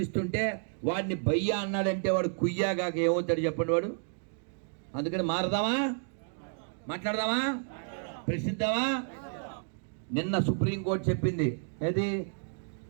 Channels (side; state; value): left; silent; 57 dB below the other